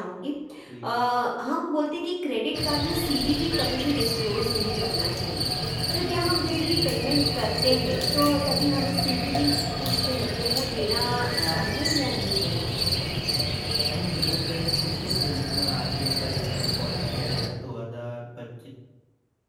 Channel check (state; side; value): identical; both; correlation 1.00